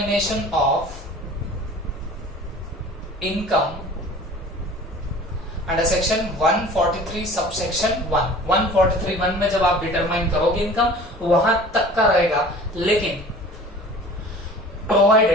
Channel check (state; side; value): normal; both; correlation 0.44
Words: of income under section 143 subsection 1। 143(1) में जब आप डिटरमाइन करोगे इनकम वहां तक का रहेगा। लेकिन